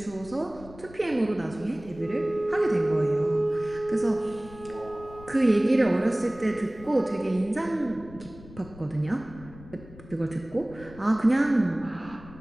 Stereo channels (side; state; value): left; noise; rumble, 19 dB below the sound